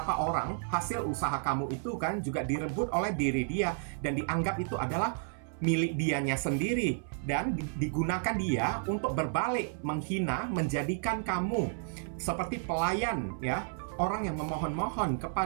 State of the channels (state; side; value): silent; left; 57 dB below the other